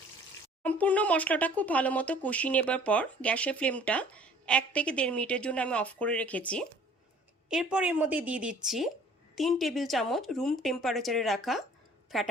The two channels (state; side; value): normal; both; correlation 0.53